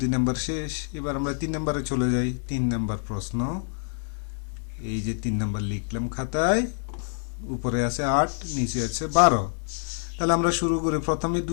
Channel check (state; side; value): silent; right; 61 dB below the other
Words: 2 নাম্বার শেষ। এবার আমরা 3 নাম্বারে চলে যাই। 3 নাম্বার প্রশ্ন, এই যে 3 নাম্বার লিখলাম খাতায়। উপরে আছে 8, নিচে আছে 12। তাহলে আমরা শুরু করি, প্রথমে